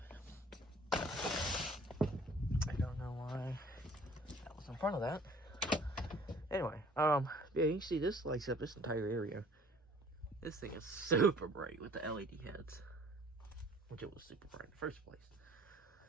I don't know why that was in front of that. Anyway, yeah, you can see this lights up this entire area. This thing is super bright with the LED heads, which it was super bright in the first place.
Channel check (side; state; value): both; normal; correlation 0.53